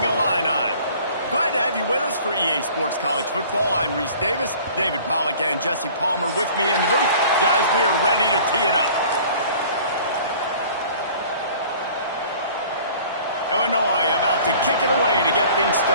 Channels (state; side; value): inverted; both; correlation -0.49